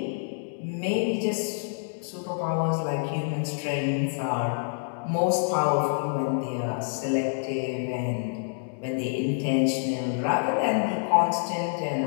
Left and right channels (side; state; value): right; silent; digital silence